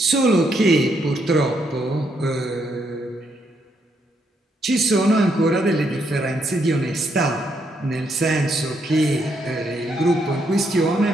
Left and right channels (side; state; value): both; normal; correlation 0.75